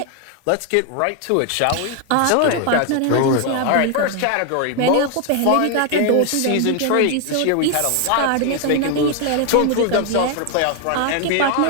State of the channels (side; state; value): both; different; correlation 0.01